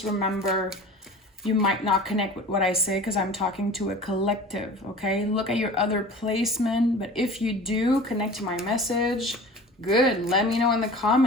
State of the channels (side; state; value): both; normal; correlation 0.40